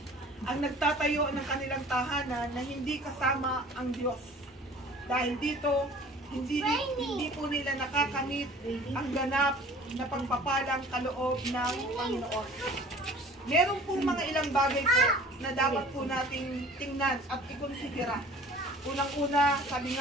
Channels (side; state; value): both; normal; correlation 0.47